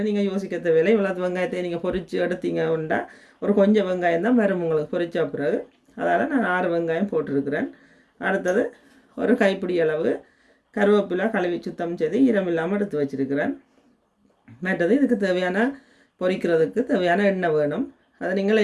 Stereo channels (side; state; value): both; identical; correlation 1.00